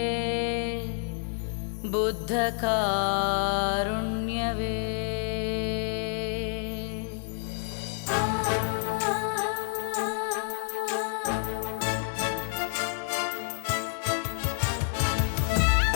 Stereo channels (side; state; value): right; silent; 58 dB below the other